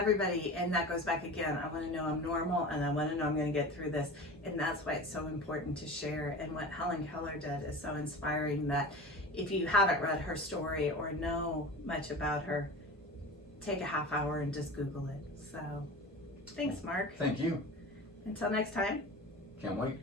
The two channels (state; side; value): normal; both; correlation 0.33